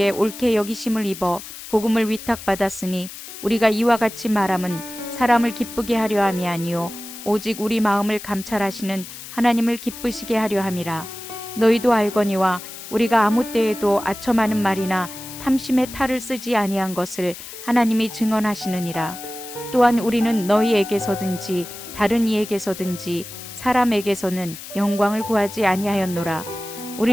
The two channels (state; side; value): noise; left; hiss, 13 dB below the sound